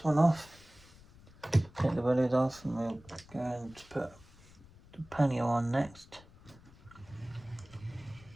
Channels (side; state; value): left; noise; rumble, 23 dB below the sound